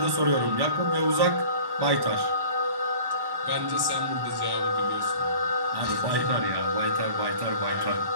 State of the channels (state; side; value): late; left; 1.1 ms